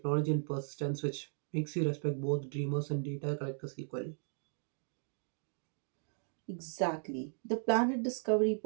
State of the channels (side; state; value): left; silent; digital silence